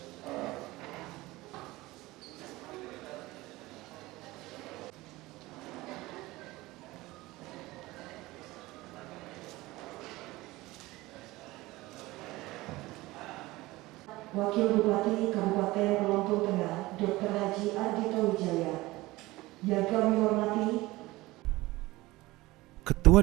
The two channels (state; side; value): quieter; left; 19.6 dB